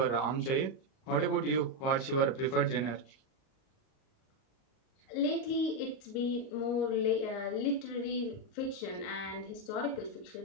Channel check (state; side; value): late; right; 38 ms